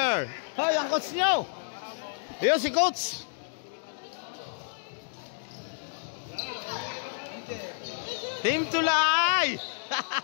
Hoy, ang coach nyo. Ayun si coach. Team Tulay.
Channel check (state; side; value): silent; right; digital silence